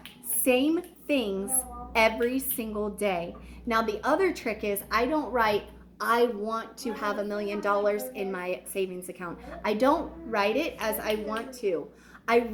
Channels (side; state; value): both; identical; correlation 1.00